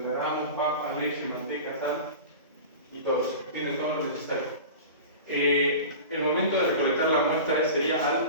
gramos, papa, leche, manteca, sal y todo eso. Tienen todo lo necesario. El momento de recolectar la muestra sería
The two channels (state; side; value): inverted; both; correlation -0.33